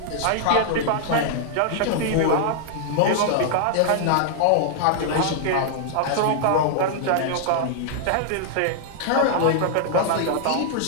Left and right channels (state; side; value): different; both; correlation -0.01